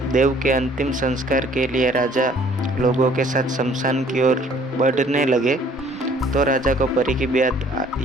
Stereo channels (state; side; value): normal; both; correlation 0.57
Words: देव के अंतिम संस्कार के लिए राजा लोगों के साथ शमशान की ओर बढ़ने लगे, तो राजा को परी की बात